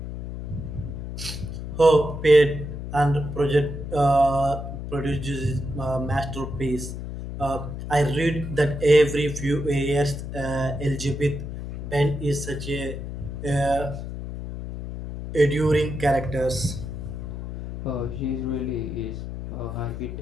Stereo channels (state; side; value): noise; left; hum, 7 dB below the sound